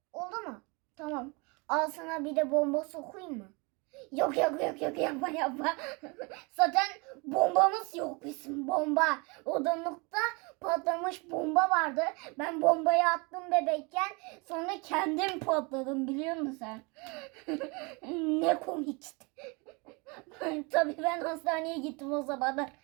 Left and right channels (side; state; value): left; quieter; 29.4 dB